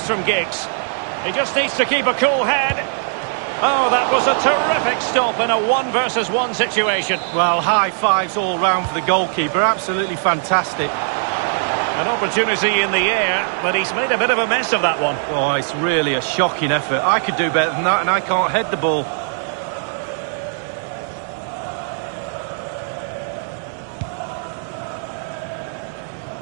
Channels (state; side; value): silent; left; 66 dB below the other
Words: from Giggs. He just needs to keep a cool head. Oh, that was a terrific stop in a 1-versus-1 situation. Well, high fives all round for the goalkeeper. Absolutely fantastic. An opportunity in the air, but he's made a bit of a mess of that one. Oh, it's really a shocking effort. I could do better than that, and I can't head the ball.